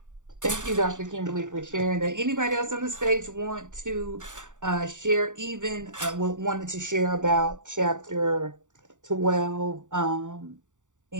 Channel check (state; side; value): late; left; 0.86 ms